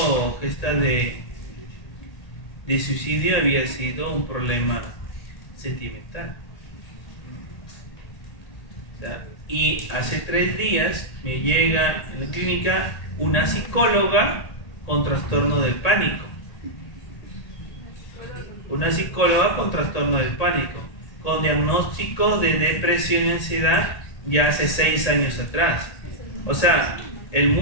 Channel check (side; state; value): right; late; 1.8 ms